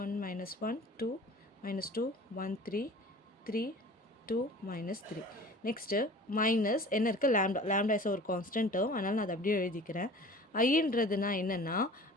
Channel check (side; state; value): both; normal; correlation 0.43